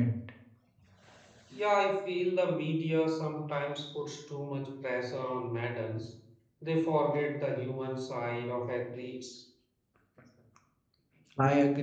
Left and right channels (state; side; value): identical; both; correlation 1.00